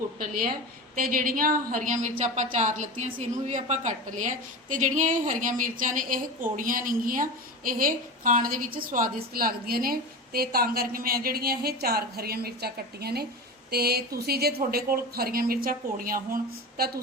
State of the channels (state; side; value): normal; both; correlation 0.27